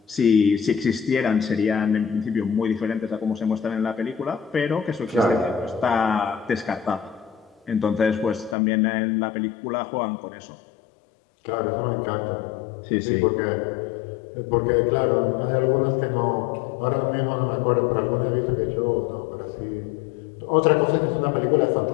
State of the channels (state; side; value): drops out; right; at 8.6 s